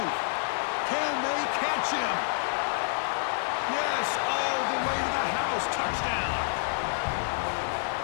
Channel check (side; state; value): right; silent; 59 dB below the other